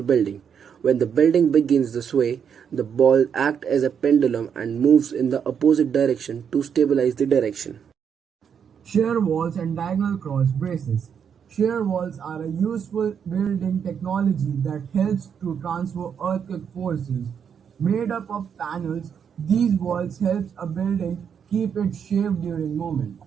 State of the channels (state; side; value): quieter; left; 7.5 dB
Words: building. When the building begins to sway, the ball acts as a pendulum and moves in the opposite direction to stabilize the direction. Shear walls and diagonal cross braces. Shear walls are a useful building technology that helps to transfer earthquake forces. Made up of panels, these walls help a building keep its shape during movement.